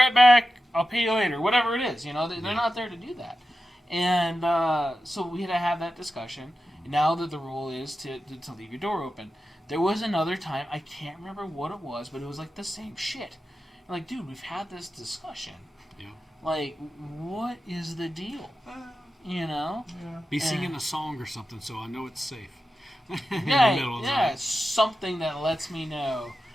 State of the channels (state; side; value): normal; both; correlation 0.91